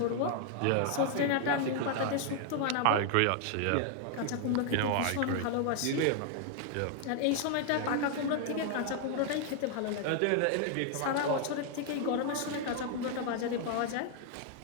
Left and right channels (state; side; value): different; both; correlation 0.00